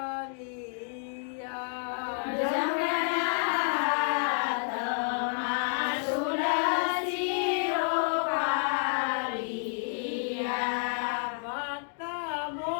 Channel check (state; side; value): silent; right; digital silence